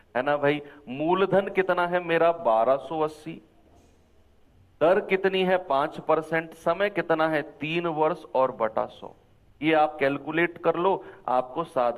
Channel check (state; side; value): identical; both; correlation 1.00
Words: ना भाई। मूलधन कितना है मेरा 1280, दर कितनी है 5%, समय कितना है 3 वर्ष और बटा 100। ये आप कैलकुलेट कर लो, आपको